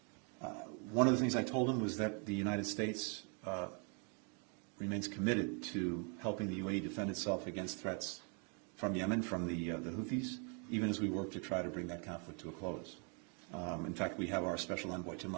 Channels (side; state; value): left; quieter; 38.2 dB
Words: One of the things I told him was that the United States remains committed to helping the UAE defend itself against threats from Yemen, from the Houthis, even as we work to try to bring that conflict to a close. In fact, we have our special envoy, Tim